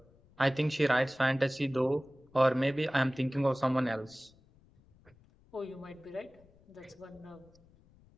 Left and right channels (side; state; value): left; noise; rumble, 29 dB below the sound